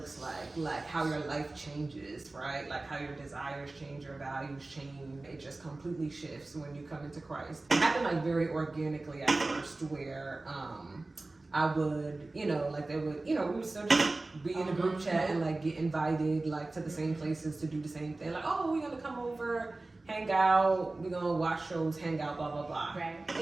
like how your life changes, right? Like how your desires change, your values change. It just completely shifts when you come into Christ. It happened like very organically at first, where I would, you know, like they would, you know, we would still just be in a group chat and like get invited like to the same places to do the same thing. Like, oh, we're gonna come over, hang out, we're gonna watch shows, hang out, blah, blah, blah. Right.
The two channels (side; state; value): left; quieter; 3.1 dB